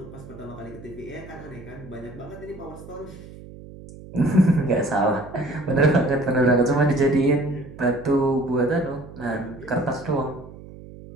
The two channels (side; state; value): right; noise; hum, 16 dB below the sound